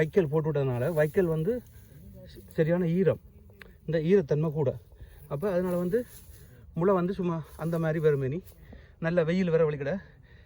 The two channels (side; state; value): both; identical; correlation 1.00